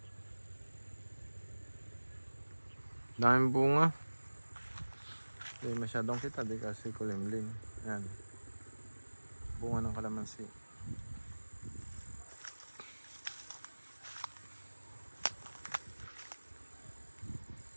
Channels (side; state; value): both; inverted; correlation -1.00